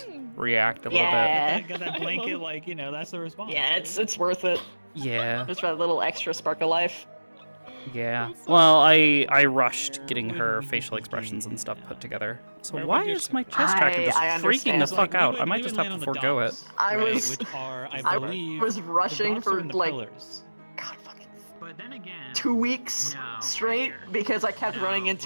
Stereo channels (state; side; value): inverted; both; correlation -1.00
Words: react a little Yeah. bit. Got that blanket, like, you know, that's the response. Yeah, it's worth it. Yeah. Just for that little extra spark of life. Yeah. Well, I rushed getting her facial expressions and stuff put together. So why is my chest tracker just I freaking the understand. fuck out? I might just have to forego it. I right, was, which are, I I believe, was the rushing docks are for in the like pillars. But then again, 2 weeks straight because I kept running